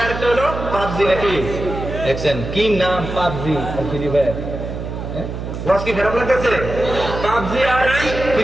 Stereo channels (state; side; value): noise; right; hum, 7 dB below the sound